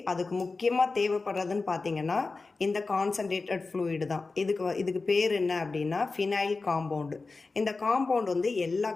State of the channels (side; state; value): right; quieter; 3.9 dB